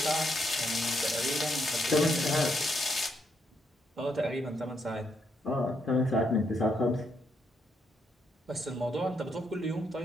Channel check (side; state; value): both; normal; correlation 0.77